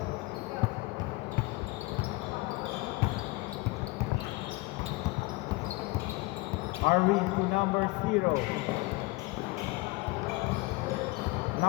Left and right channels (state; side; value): quieter; right; 22.8 dB